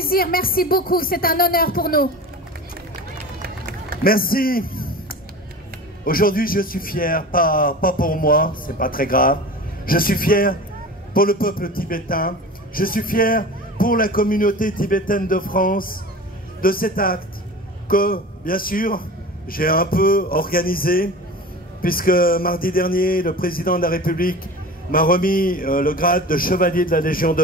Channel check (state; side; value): normal; both; correlation 0.34